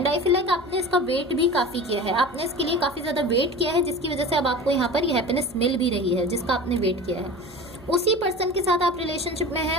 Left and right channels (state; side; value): noise; left; hum, 24 dB below the sound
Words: आई फील लाइक आपने इसका वेट भी काफ़ी किया है, आपने इसके लिए काफ़ी ज़्यादा वेट किया है, जिसकी वजह से अब आपको यहाँ पर ये हैप्पीनेस मिल भी रही है जिसका आपने वेट किया है। उसी पर्सन के साथ आप रिलेशनशिप में हैं,